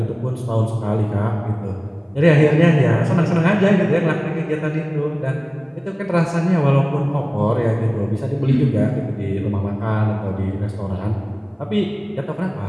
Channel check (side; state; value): both; identical; correlation 1.00